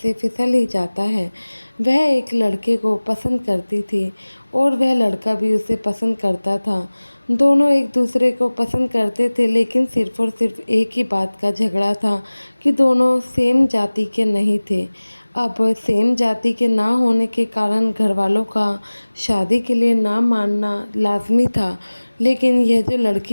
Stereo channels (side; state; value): both; inverted; correlation -1.00